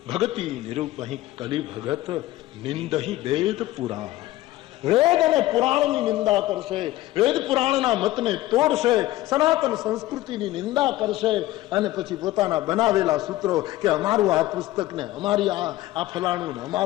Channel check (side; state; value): right; quieter; 16.5 dB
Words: ભગતિ નિરૂપ અહીં કલી ભગત નિંદહી વેદ પુરાણ. વેદ અને પુરાણની નિંદા કરશે, વેદ પુરાણના મતને તોડશે, સનાતન સંસ્કૃતિની નિંદા કરશે અને પછી પોતાના બનાવેલા સૂત્રો કે અમારું આ પુસ્તક ને, અમારી આ ફલાણું ને,